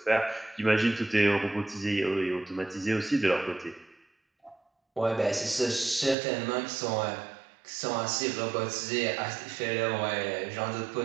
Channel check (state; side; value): drops out; left; at 6.2 s